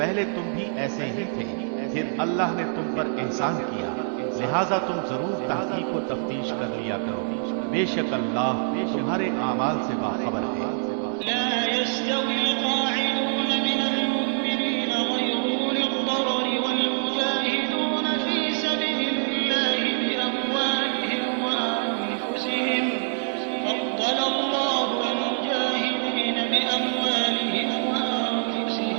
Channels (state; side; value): silent; left; digital silence